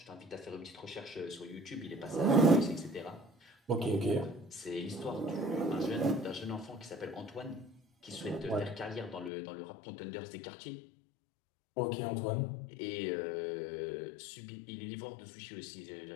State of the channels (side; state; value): right; drops out; at 9.3 s